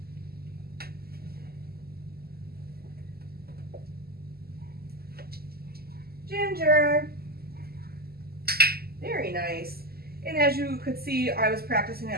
Ginger. Very nice. And as you could see, I was practicing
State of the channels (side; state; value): left; late; 0.45 ms